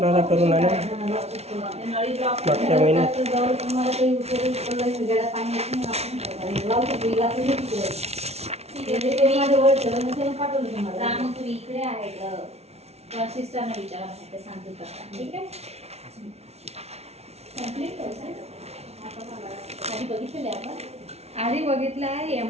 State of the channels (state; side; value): late; left; 0.31 ms